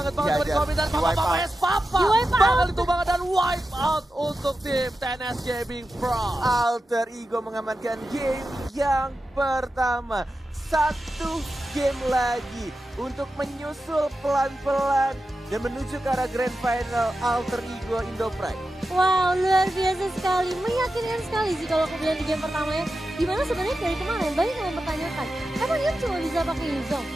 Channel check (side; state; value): both; normal; correlation 0.91